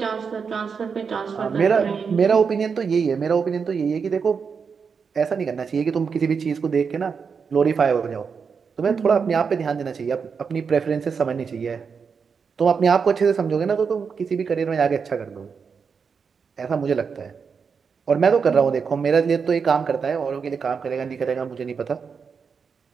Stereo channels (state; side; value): quieter; left; 5.9 dB